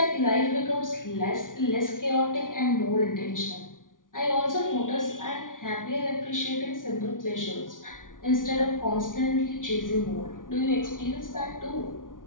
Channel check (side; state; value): right; late; 0.88 ms